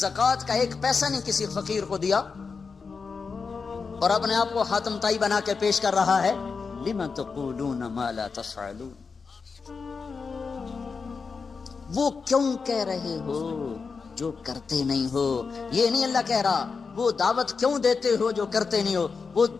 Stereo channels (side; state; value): right; quieter; 5.0 dB